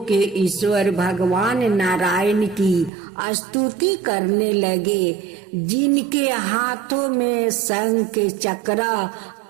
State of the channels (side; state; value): left; drops out; at 2.9 s